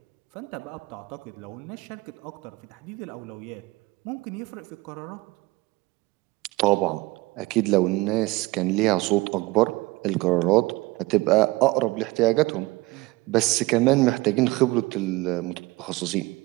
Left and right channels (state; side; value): quieter; left; 21.5 dB